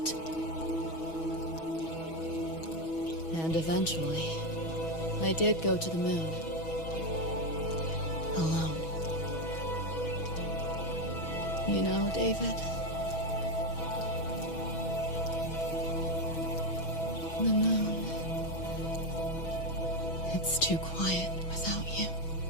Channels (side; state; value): right; late; 6.2 ms